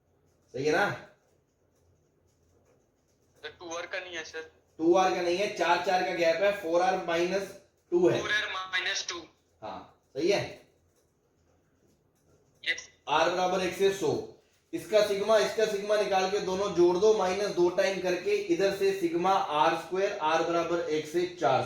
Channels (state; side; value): identical; both; correlation 1.00